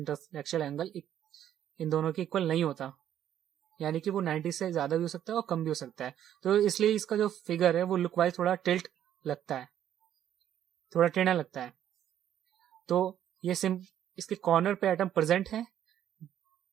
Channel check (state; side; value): quieter; left; 10.7 dB